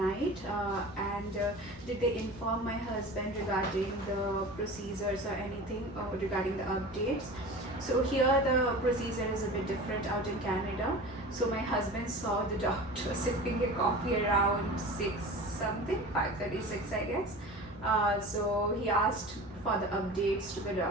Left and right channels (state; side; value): normal; both; correlation 0.35